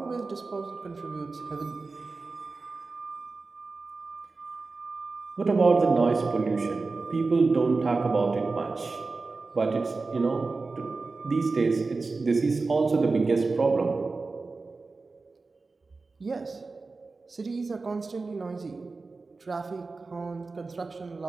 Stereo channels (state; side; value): quieter; left; 3.9 dB